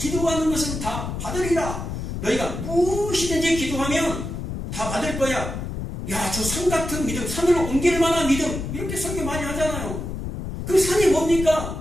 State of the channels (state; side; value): noise; left; rumble, 6 dB below the sound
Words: 것은 다 받으리라. 너희가 무엇이든지 기도하면 다 받을 거야. 야, 저 산 같은 믿음, 산으로 옮길 만한 믿음, 이렇게 설교 많이 하잖아요. 그 산이